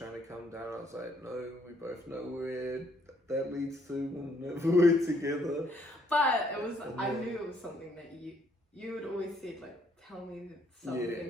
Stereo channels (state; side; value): normal; both; correlation 0.68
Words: to come down. I was like, no, we both know where that leads to. We'll never work together. But it was, I knew it was something that you had always said, tell me some